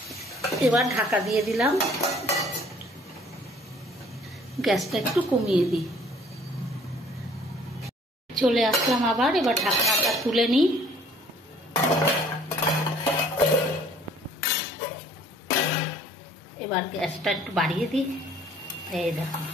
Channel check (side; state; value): both; normal; correlation 0.56